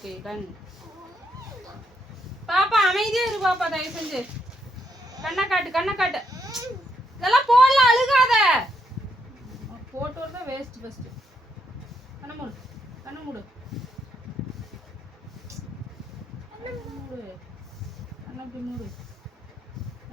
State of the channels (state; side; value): normal; both; correlation 0.77